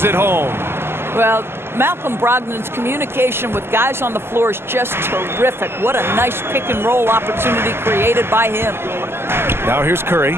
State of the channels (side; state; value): left; late; 0.12 ms